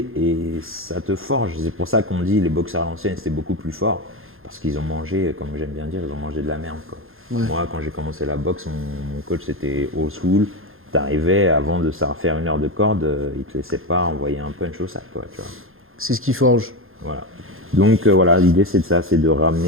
et ça te forge. C'est pour ça qu'on dit les boxeurs à l'ancienne, c'était beaucoup plus fort, parce qu'ils ont mangé, comme j'aime bien dire, ils ont mangé de la merde, quoi. Ouais. Moi, quand j'ai commencé la boxe, mon coach c'était old school. T'arrivais, avant de savoir faire 1 heure de corde, il te laissait pas envoyer un punch au sac, quoi, tu vois. C'est ce qui forge. Voilà. Donc voilà, l'idée c'est de ça, c'est de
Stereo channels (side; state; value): left; late; 0.60 ms